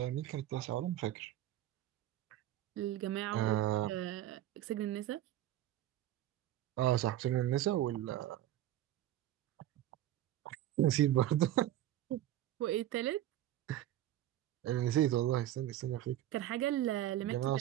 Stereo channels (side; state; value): left; quieter; 13.3 dB